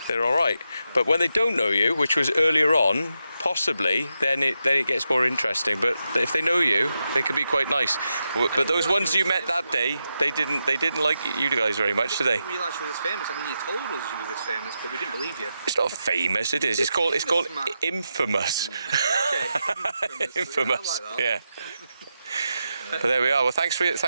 they're alright. But when they don't know you, which was earlier on, possibly, then it gets more interesting. But if they know you, they can be quite nice. But those ones you met that day, they didn't like you guys very much, did they? We didn't realise you were this famous. I mean, you told us you were this famous, but we didn't believe you. It's not famous, it is. It's called infamous. Okay, infamous. I like that. Yeah. But there we are. Well, thanks for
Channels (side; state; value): both; inverted; correlation -0.87